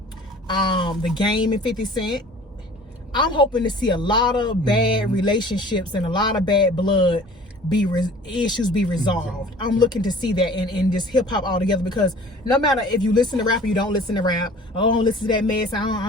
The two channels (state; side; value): normal; both; correlation 0.47